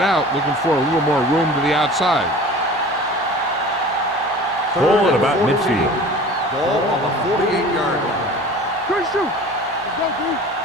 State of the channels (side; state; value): both; normal; correlation 0.41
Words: out, looking for a little more room to the outside. Ball at about midfield. Ball on the 48-yard line. Good shoot. Let's go, dude.